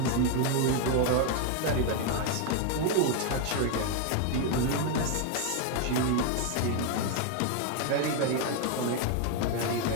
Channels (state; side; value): different; both; correlation 0.01